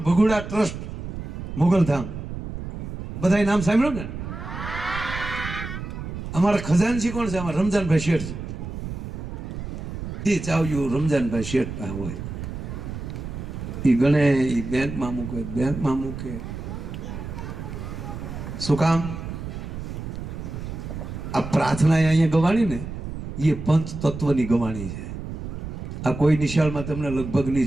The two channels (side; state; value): right; noise; rumble, 8 dB below the sound